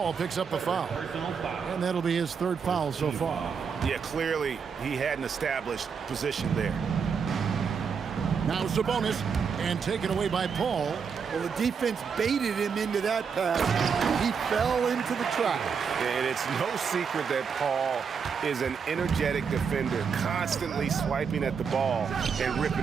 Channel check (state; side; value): quieter; left; 6.2 dB